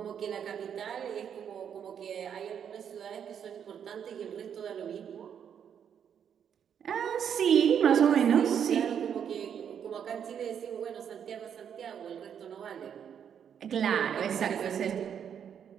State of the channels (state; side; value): quieter; left; 8.3 dB